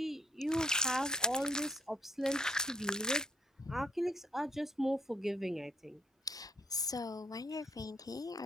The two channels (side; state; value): both; normal; correlation 0.69